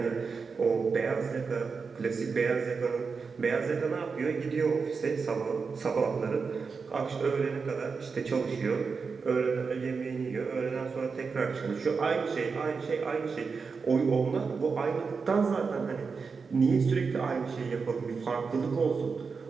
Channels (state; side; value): quieter; left; 5.1 dB